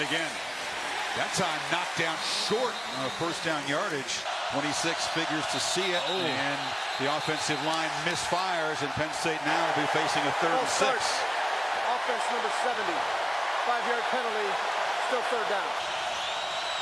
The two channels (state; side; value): identical; both; correlation 1.00